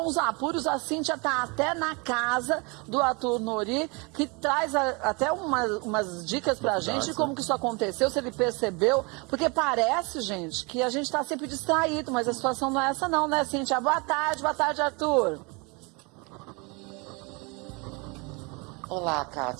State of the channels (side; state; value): left; quieter; 29.5 dB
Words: uns apuros, a Cíntia tá até na casa do Arthur Nori, que traz até umas dicas pra gente de como que isso aconteceu, se ele percebeu, porque parece, gente, que a gente tá sempre distraído, mas a situação não é essa não, né, Cíntia? Boa tarde, Arthur. Olá,